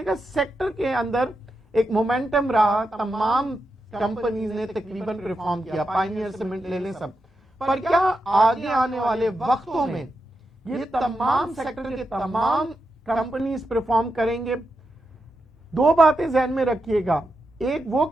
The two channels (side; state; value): both; normal; correlation 0.87